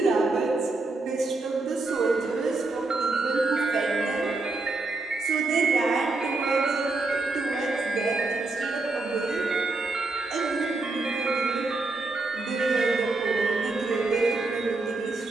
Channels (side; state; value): left; quieter; 3.4 dB